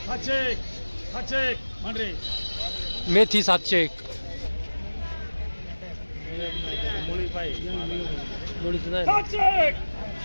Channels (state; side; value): inverted; both; correlation -1.00